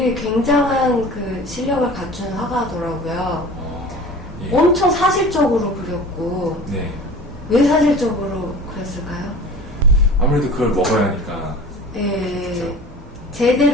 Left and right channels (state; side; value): normal; both; correlation 0.40